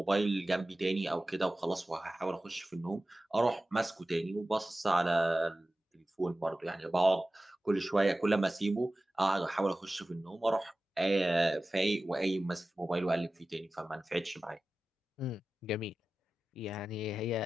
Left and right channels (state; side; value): normal; both; correlation 0.95